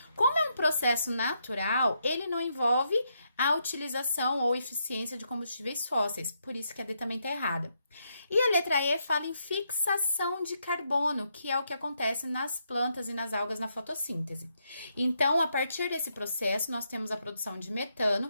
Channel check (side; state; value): both; inverted; correlation -0.79